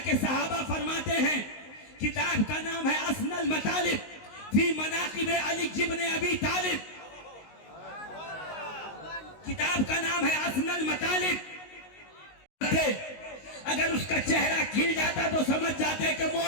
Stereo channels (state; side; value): late; right; 19 ms